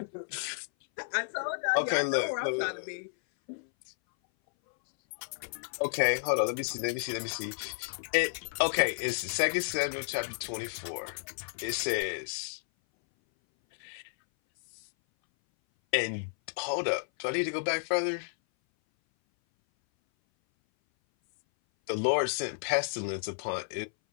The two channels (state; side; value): silent; right; 57 dB below the other